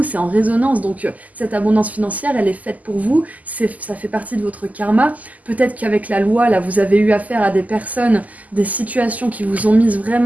c'est en résonance. Donc cette abondance financière, elle est faite pour vous, ça fait partie de votre karma. Peut-être qu'avec la loi, là, vous avez eu affaire à des personnes, des situations qui vous ont mise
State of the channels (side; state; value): left; late; 0.077 ms